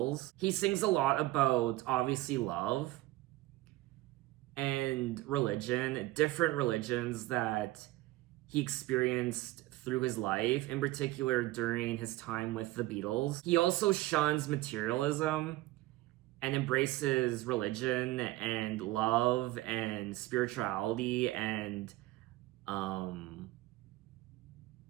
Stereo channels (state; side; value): quieter; left; 18.1 dB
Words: He sings a lot about, obviously, love and religion, different religions that he experienced through his life, in particular during his time with the Beatles. He also shuns materialism and embraces religion and love and spirituality and